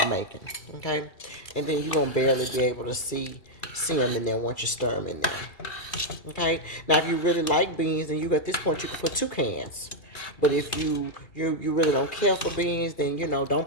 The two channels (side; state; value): right; late; 2.4 ms